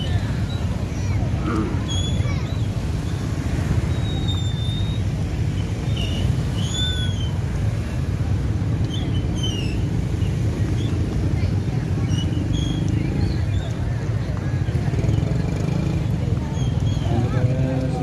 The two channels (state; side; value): identical; both; correlation 1.00